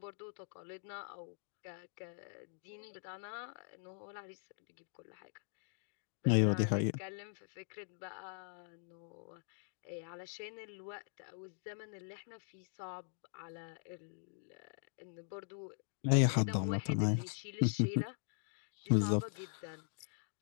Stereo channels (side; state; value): right; silent; digital silence